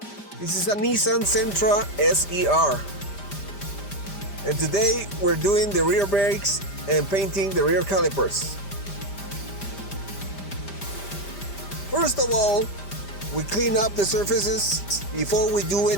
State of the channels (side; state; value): right; late; 5.1 ms